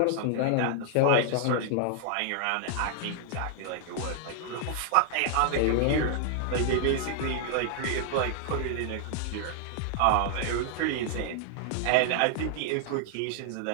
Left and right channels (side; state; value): both; different; correlation 0.00